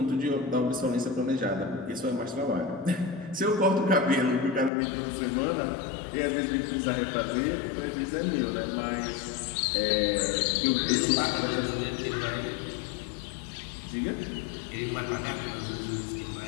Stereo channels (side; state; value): right; drops out; at 4.7 s